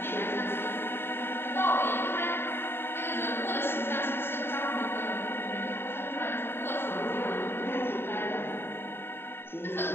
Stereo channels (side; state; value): right; late; 0.11 ms